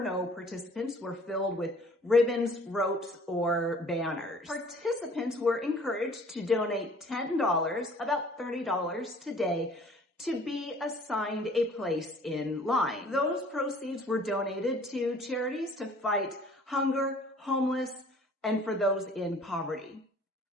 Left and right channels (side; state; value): both; normal; correlation 0.53